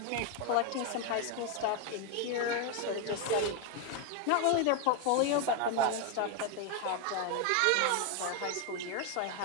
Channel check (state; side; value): different; both; correlation 0.01